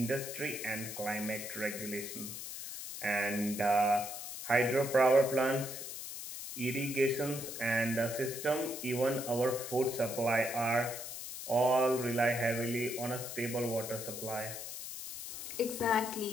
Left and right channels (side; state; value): left; noise; hiss, 8 dB below the sound